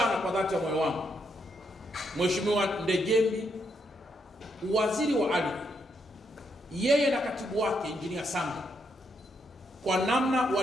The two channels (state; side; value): normal; both; correlation 0.78